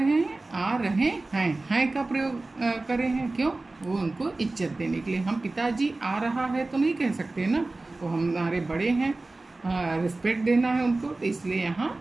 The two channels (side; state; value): left; quieter; 3.2 dB